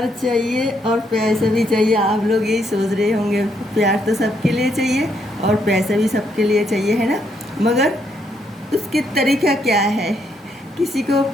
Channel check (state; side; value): normal; both; correlation 0.75